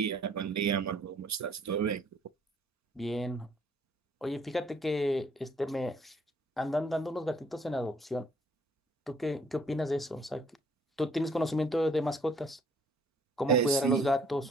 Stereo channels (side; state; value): both; normal; correlation 0.62